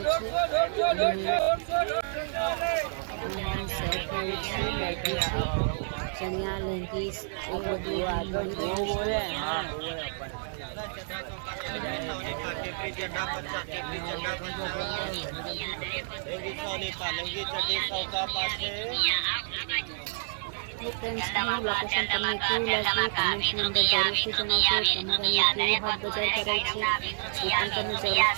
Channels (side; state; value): left; silent; digital silence